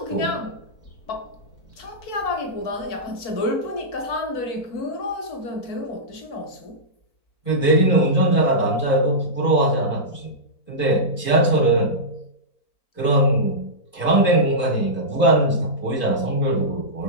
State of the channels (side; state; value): right; late; 4.5 ms